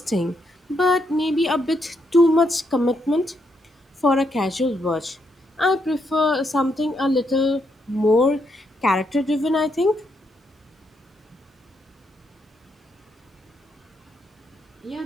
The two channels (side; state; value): both; normal; correlation 0.78